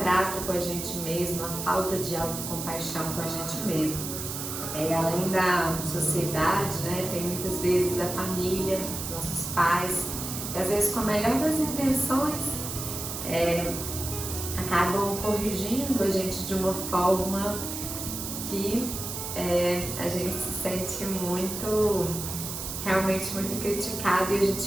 com a gente mesmo, a falta de autocompaixão com a gente mesmo. Além da sociedade, tem muitas vezes a família, nossos pais, que às vezes com a melhor das intenções acabam corrigindo a gente de uma forma que a gente se sente realmente muito criticado, e a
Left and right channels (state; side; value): noise; right; hiss, 6 dB below the sound